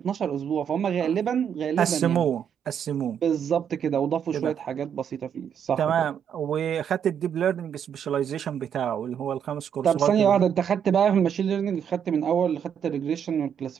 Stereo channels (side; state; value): left; quieter; 8.2 dB